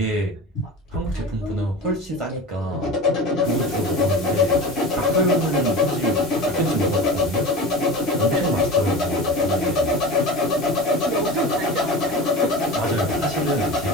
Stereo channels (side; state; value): both; normal; correlation 0.31